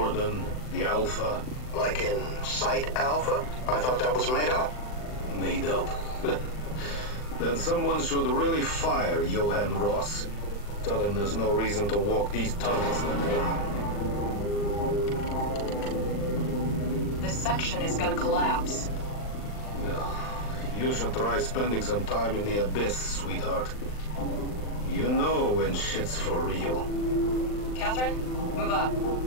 the Alpha. Like in Site Alpha? I thought that was made up. Made up? Then someone should really fire Johan Ross. Tell him there's no reason to walk these tunnels no more. This section is gonna collapse. Yeah, you should try spending some time in the abyss, sweetheart. You know when shit's for real. Catherine, move up.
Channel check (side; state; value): right; late; 39 ms